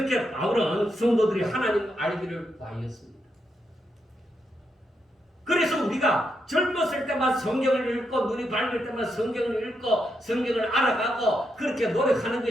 바울은 성도들이 하나님을 알기를 구하였습니다. 그래서 우리가 젊었을 때만 성경을 읽고 눈이 밝을 때만 성경을 읽고 성경을 알아가고 그렇게 노력하는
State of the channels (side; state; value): both; normal; correlation 0.82